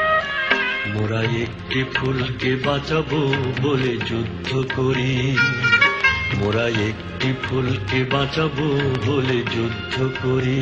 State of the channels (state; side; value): identical; both; correlation 1.00